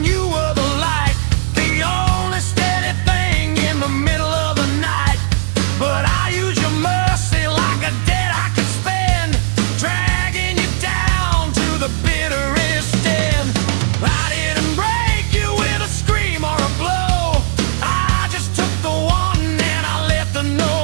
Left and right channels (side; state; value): left; silent; digital silence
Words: you were the light, the only steady thing in the middle of the night. But I use your mercy like a debt I could spend, dragging you down to the bitterest end. I didn't break you with a scream or a blow, I just took the one and I let the